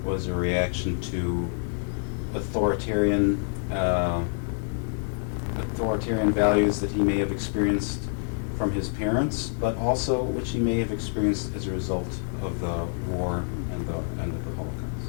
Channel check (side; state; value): right; silent; 58 dB below the other